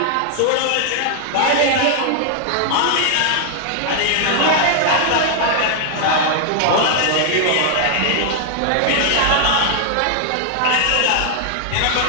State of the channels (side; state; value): both; different; correlation -0.01